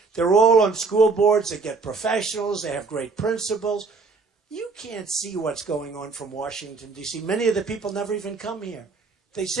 they're all on school boards. They get professionals. They have great principals. You can't see what's going on from Washington, D.C. Many of the people never even come here. They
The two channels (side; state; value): left; quieter; 4.4 dB